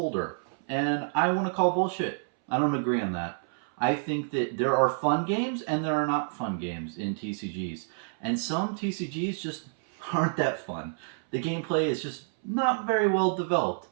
And I want to call bullshit. I don't agree on that. I think that there are fun games and there are not fun games in TCGs. And some TCGs just aren't that fun. The gameplay is just not very well developed,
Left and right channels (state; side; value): silent; left; 59 dB below the other